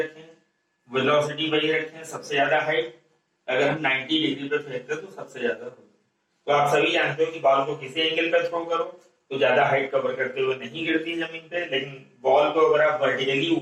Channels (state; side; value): identical; both; correlation 1.00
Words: वेलोसिटी वही रखें, सबसे ज्यादा हाइट अगर हम 90 डिग्री पे फेंकते तो सबसे ज्यादा होगा। तो आप सभी जानते हो कि बॉल को किसी एंगल पे थ्रो करो तो ज्यादा हाइट कवर करते हुए नहीं गिरती जमीन पे, लेकिन बॉल को अगर आप वर्टिकली